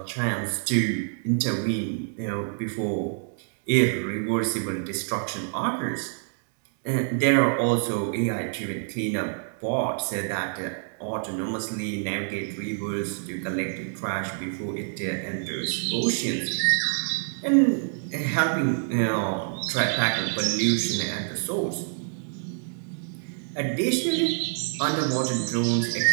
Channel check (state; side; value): silent; left; 60 dB below the other